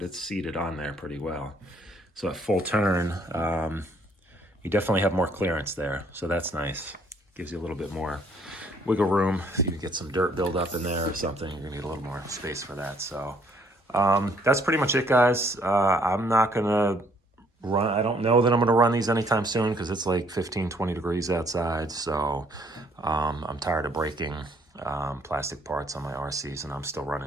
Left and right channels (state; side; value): normal; both; correlation 0.64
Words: it's seated on there pretty well. So at full turn, you definitely have more clearance there. So that's nice. Gives you a little bit more wiggle room. If you get some dirt buildup in there or something, you're gonna need a little more space for that. So that's pretty much it, guys. I'm not gonna run, I don't know that I'm gonna run these anytime soon because it's like 15, 20 degrees outside. So I'm tired of breaking plastic parts on my RCs, and I'm still